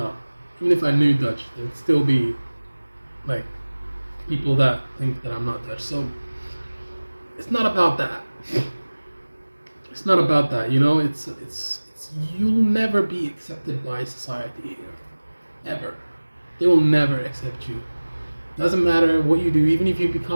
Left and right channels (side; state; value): both; inverted; correlation -1.00